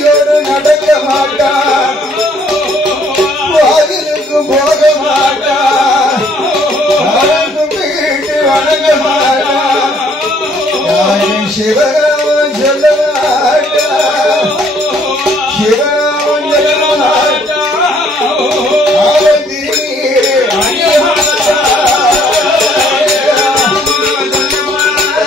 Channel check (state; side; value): normal; both; correlation 0.63